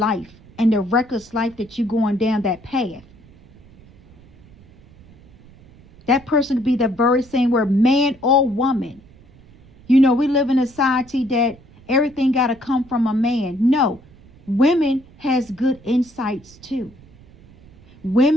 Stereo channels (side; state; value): right; noise; rumble, 25 dB below the sound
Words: and the reckless life that you're going down that path. That person could be the very same word, man or woman. You know, we live in a society that everything got to come from a man. No, women has good insights too.